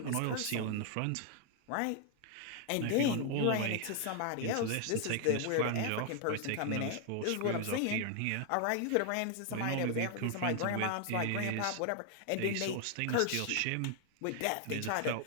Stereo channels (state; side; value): different; both; correlation 0.00